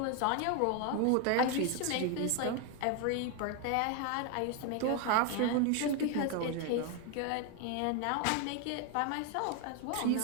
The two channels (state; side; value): different; both; correlation 0.01